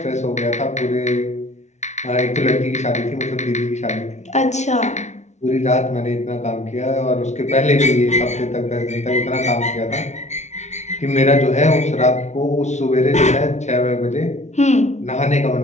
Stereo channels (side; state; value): right; late; 0.33 ms